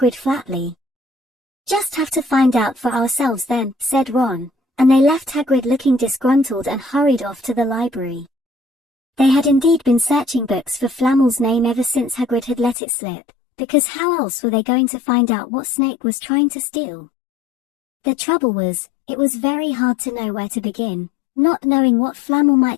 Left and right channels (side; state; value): right; drops out; at 12.8 s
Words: flatly. Just have to find out for ourselves then, said Ron, and they left Hagrid looking disgruntled and hurried off to the library. They had indeed been searching books for Flamel's name ever since Hagrid had let it slip, because how else were they going to find out what Snape was trying to steal? The trouble was, it was very hard to know where to begin, not knowing what Flamel